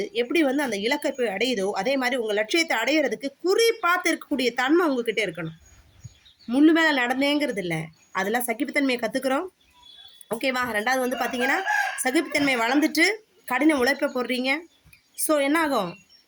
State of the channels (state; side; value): identical; both; correlation 1.00